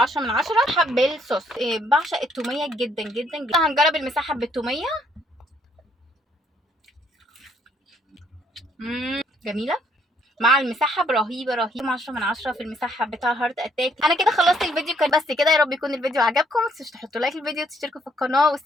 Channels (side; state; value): both; normal; correlation 0.68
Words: من 10. حب الصوص، بعشق التوميه جدا جدا جدا. هنجرب المسحب بالتوميه. جميله مع المسحب، رهيبه رهيبه، 10 من 10 في المسحب بتاع هارت اتاك. انا كده خلصت الفيديو، كان بس كده. يا رب يكون الفيديو عجبكم، متنسوش تحطوا لايك للفيديو وتشتركوا في القناه،